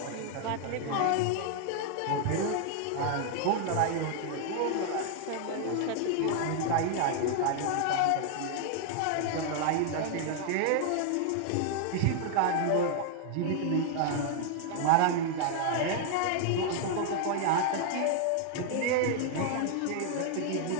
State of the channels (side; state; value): both; different; correlation 0.00